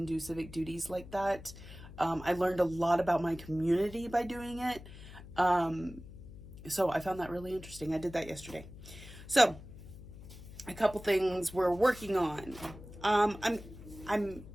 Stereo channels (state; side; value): noise; left; hum, 16 dB below the sound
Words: do civic duties like that. I learned a lot about my community by doing it. So I found that really interesting. I did that yesterday. So, a couple things we're working on. I'm